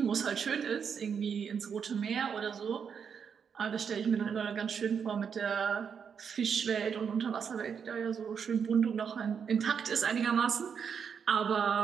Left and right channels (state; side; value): quieter; left; 6.9 dB